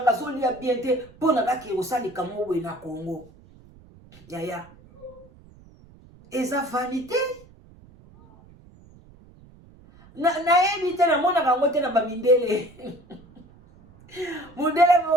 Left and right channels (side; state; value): right; noise; rumble, 24 dB below the sound